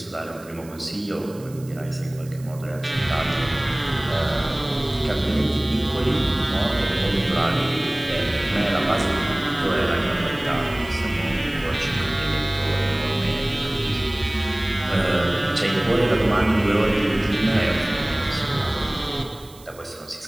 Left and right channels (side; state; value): right; noise; hiss, 22 dB below the sound